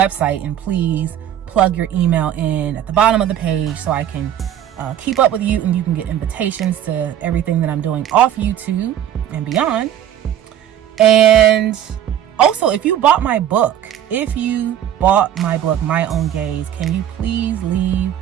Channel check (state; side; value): quieter; left; 10.7 dB